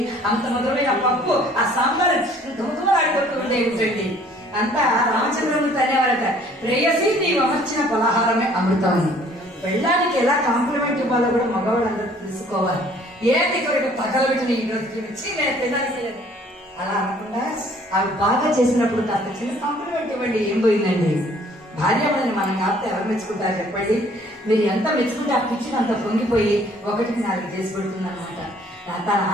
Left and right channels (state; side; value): normal; both; correlation 0.57